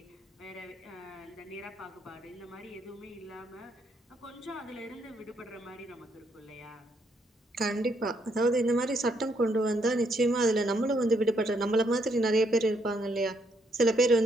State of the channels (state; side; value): normal; both; correlation 0.74